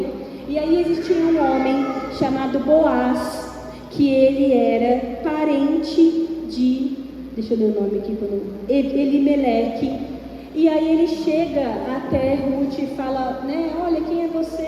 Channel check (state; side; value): identical; both; correlation 1.00